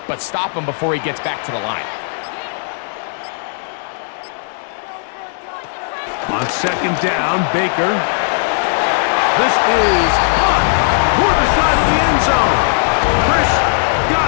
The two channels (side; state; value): right; silent; digital silence